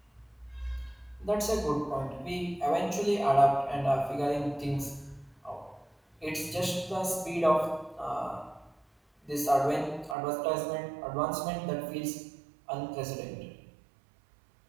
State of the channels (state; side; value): drops out; left; at 10.2 s